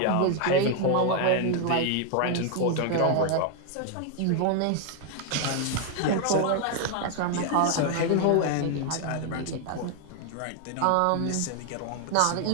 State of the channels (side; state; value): both; different; correlation 0.00